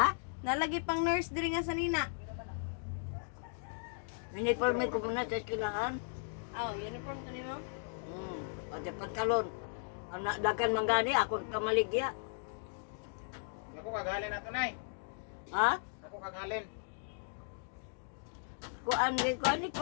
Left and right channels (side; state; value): right; silent; digital silence